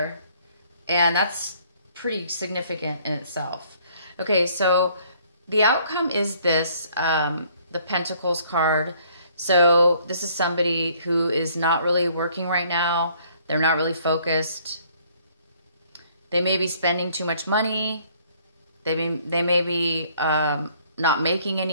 And that's pretty significant in itself. Okay, so the outcome is this, the Pentacles card. So this is somebody who is not really working right now. They're not really focused. They may be spending too much money. They may be not making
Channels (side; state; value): both; inverted; correlation -0.61